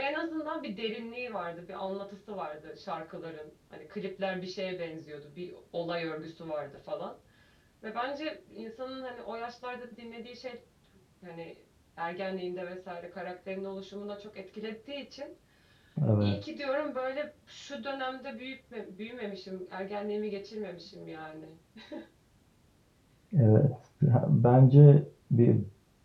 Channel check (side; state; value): both; identical; correlation 1.00